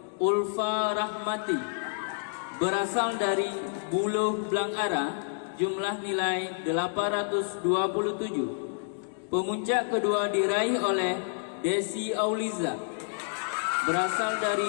Ulfa Rahmati berasal dari Buluh Blangara, jumlah nilai 827. Pemuncak kedua diraih oleh Desi Auliza berasal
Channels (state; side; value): silent; right; digital silence